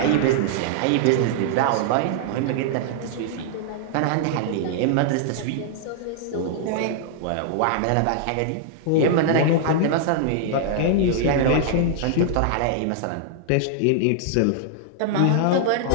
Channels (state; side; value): different; both; correlation -0.01